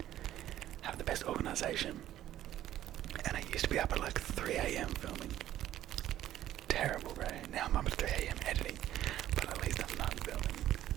have the best organisation, and I used to be up at like 3 AM filming. Terrible, bro. Now I'm up at 3 AM editing, but at least I'm not filming.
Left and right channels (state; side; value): quieter; left; 12.8 dB